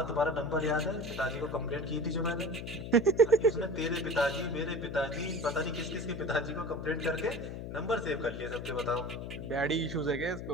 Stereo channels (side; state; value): left; noise; hum, 7 dB below the sound